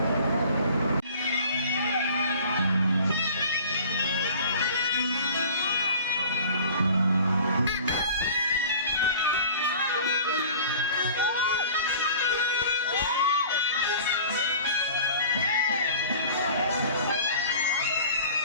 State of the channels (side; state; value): both; inverted; correlation -0.44